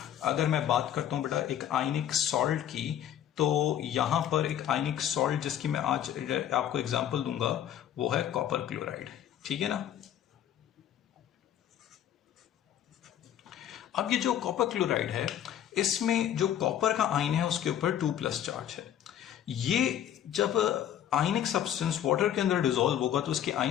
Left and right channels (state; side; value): quieter; right; 10.6 dB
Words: अगर मैं बात करता हूं बेटा एक आयनिक सॉल्ट की, तो यहां पर एक आयनिक सॉल्ट जिसकी मैं आज आपको एग्जांपल दूंगा वो है कॉपर क्लोराइड, ठीक है ना। अब ये जो कॉपर क्लोराइड है, इसमें जो कॉपर का आयन है उसके ऊपर 2+ चार्ज है। ये जब आयनिक सब्सटेंस वाटर के अंदर डिसॉल्व होगा तो उसके